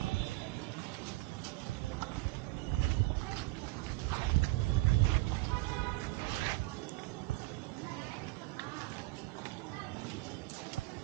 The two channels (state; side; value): quieter; left; 20.4 dB